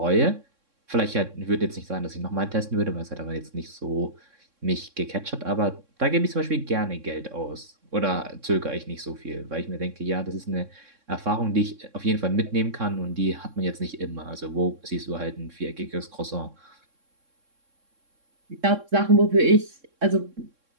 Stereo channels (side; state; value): left; late; 3.6 ms